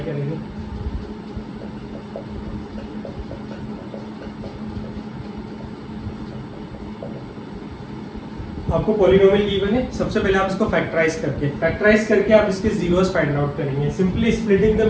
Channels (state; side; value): identical; both; correlation 1.00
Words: करेंगे। आपको पॉलिनोमियल गिवन है, सबसे पहले आप इसको फैक्टराइज करके आप इसके जीरोस फाइंड आउट करेंगे। Simply splitting the